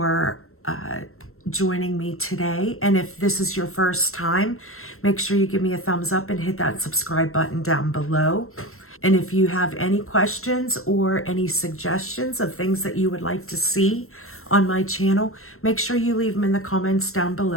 joining me today. And if this is your first time, make sure you give me a thumbs up and hit that subscribe button down below. And if you have any questions or any suggestions of things that you would like to see on my channel, make sure you leave them in the comments down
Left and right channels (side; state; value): right; late; 0.62 ms